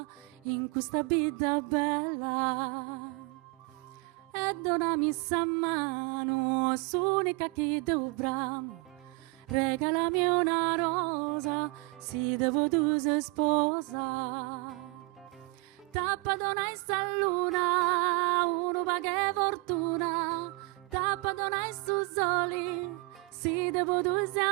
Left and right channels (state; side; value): quieter; left; 26.4 dB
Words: in questa vita bella. E donami sa mano, s'unica che dovrà, regalami una rosa, si devo tu sei sposa. Tappa donai sta luna, uno va che fortuna, tappa donai su soli, si devo due